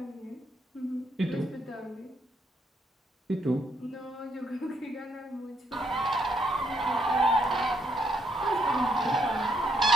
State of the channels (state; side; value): normal; both; correlation 0.74